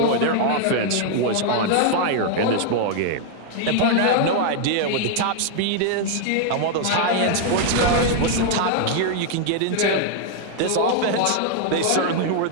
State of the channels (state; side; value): different; both; correlation 0.00